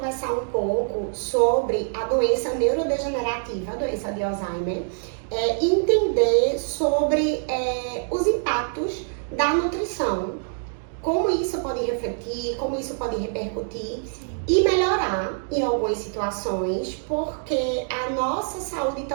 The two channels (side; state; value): left; silent; digital silence